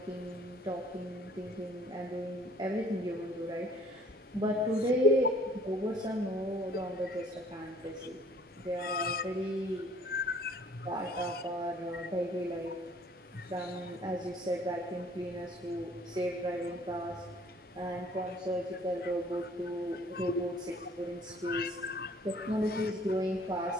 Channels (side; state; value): both; normal; correlation 0.55